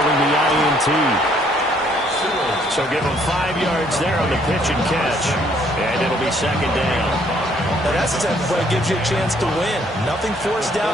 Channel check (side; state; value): both; normal; correlation 0.65